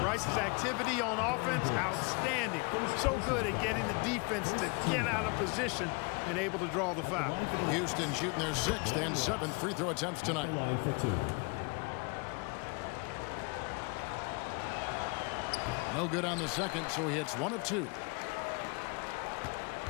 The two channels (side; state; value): right; quieter; 31.5 dB